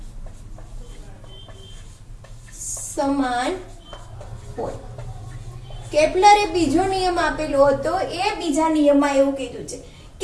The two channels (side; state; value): both; identical; correlation 1.00